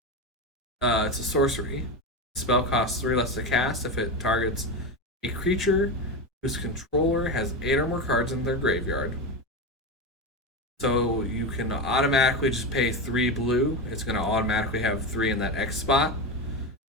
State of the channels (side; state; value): both; normal; correlation 0.18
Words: it's a sorcery. The spell costs 3 less to cast if it targets a creature whose controller has 8 or more cards in their graveyard. So you can automatically just pay 3 blue. It's going to automatically have 3 in that X spot.